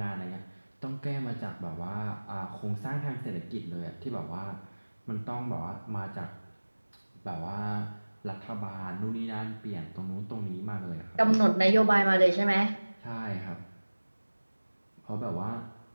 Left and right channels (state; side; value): inverted; both; correlation -1.00